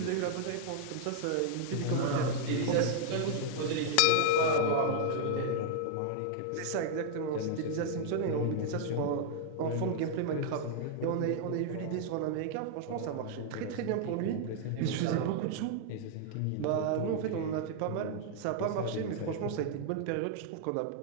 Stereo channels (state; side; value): different; both; correlation -0.01